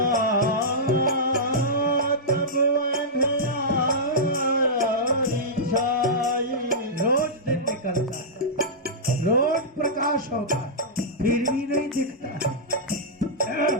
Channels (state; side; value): normal; both; correlation -0.12